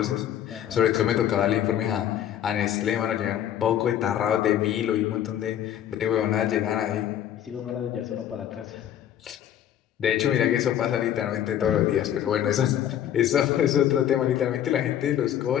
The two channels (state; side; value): quieter; right; 10.6 dB